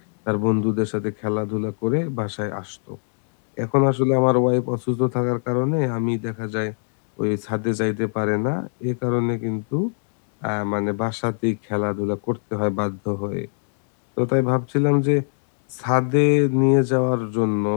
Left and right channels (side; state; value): right; silent; digital silence